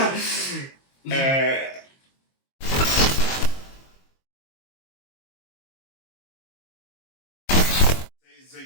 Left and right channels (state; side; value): late; right; 22 ms